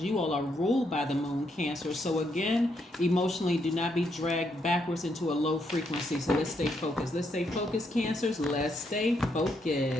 you all are ruled by the moon, Cancer. So again, emotionally, do not be dragged backwards into a low frequency. So let's stay focused. Let's stay focused, Cancers. Let's stay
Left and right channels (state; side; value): normal; both; correlation 0.77